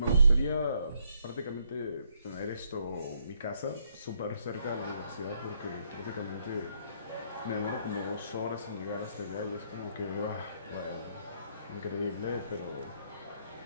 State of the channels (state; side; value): inverted; both; correlation -0.72